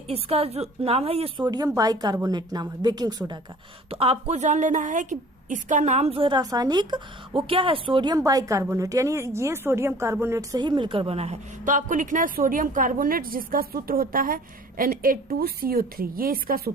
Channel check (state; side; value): normal; both; correlation 0.48